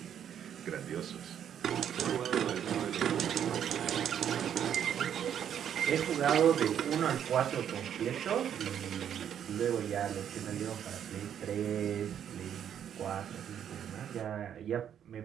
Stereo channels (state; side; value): quieter; left; 9.2 dB